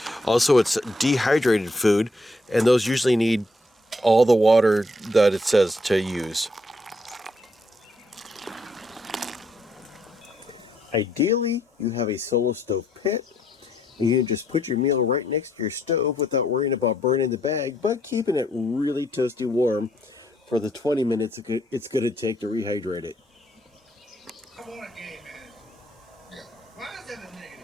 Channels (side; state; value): both; normal; correlation 0.72